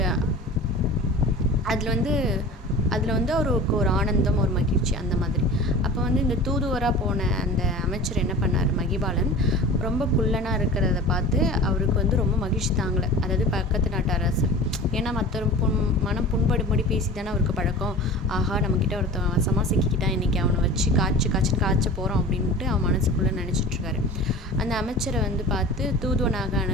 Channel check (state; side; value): normal; both; correlation 0.38